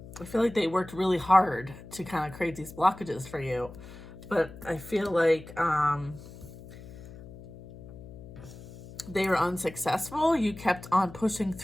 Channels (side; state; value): left; noise; hum, 16 dB below the sound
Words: I feel like they worked really hard to kind of create these blockages for you. But I feel like they were unsuccessful. You kept on pushing